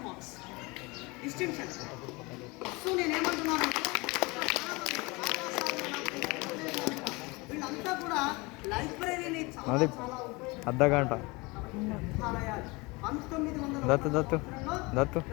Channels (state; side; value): quieter; right; 25.3 dB